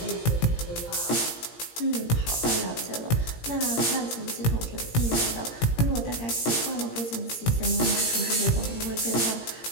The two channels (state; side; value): late; right; 17 ms